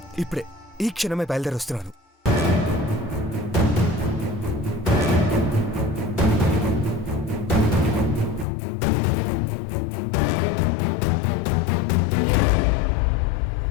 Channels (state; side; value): drops out; right; at 8.5 s